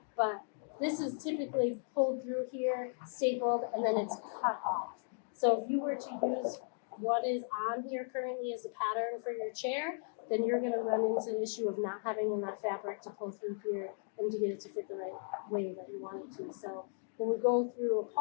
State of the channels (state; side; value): silent; right; digital silence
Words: But this is typically pulled through here, stapled, and then it's cut off. So if you were to use what is on here currently as a pattern for your chair, then you're going to run into the issue of not having enough fabric to pull through here and to get it to fit the right way that you want it to. So when we go through